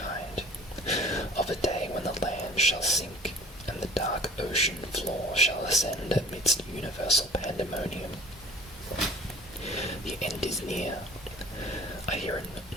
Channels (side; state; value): both; normal; correlation 0.43